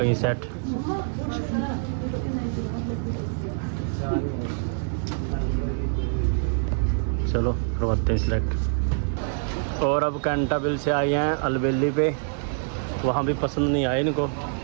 सेट। चलो करवाते हैं सिलेक्ट। और अब कैंटाबिल से आए हैं अलबेली पे, वहाँ भी पसंद नहीं आए इनको।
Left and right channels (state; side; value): silent; left; 59 dB below the other